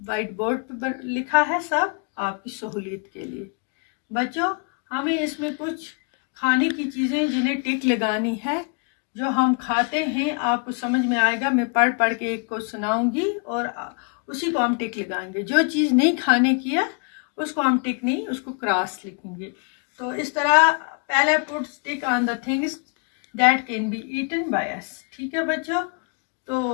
बोर्ड पर लिखा है, सब आपकी सहूलियत के लिए। बच्चों, हमें इसमें कुछ खाने की चीज़ें जिन्हें टिक लगानी है, जो हम खाते हैं। आपको समझ में आएगा, मैं पढ़ पढ़ के एक को सुनाऊंगी और उसी को हम टिक लगाएंगे। जो चीज़ नहीं खाने की है उसको हम टिक नहीं, उसको क्रॉस लिखेंगे। तो इस तरह पहले put tick on the things that can be eaten by us. ठीक है बच्चों।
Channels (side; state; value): right; quieter; 38.8 dB